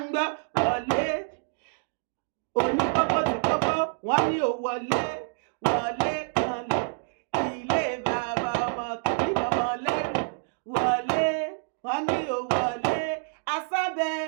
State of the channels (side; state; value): left; silent; digital silence